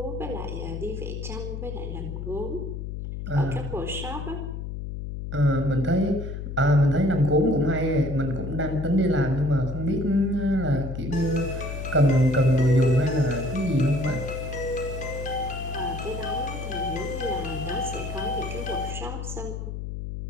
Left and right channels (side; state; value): left; noise; hum, 6 dB below the sound